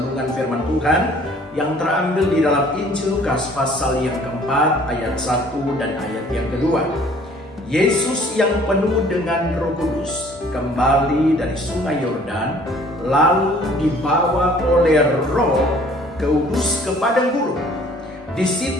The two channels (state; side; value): normal; both; correlation 0.55